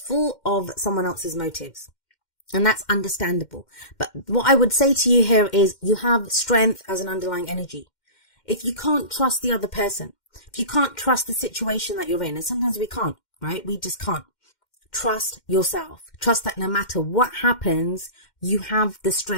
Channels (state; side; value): late; right; 2.1 ms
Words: of someone else's motives. And that's understandable. But what I would say to you here is you have strength as an underlying energy. If you can't trust the other person, if you can't trust the situation that you're in, and sometimes we can't, right? We just can't. Trust yourself. Trust that no matter what happens, you have the